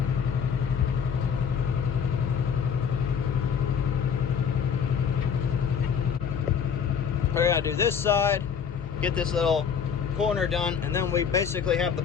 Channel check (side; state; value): right; quieter; 7.1 dB